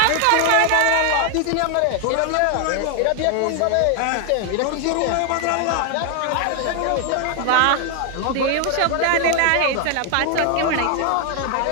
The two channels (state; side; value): different; both; correlation 0.00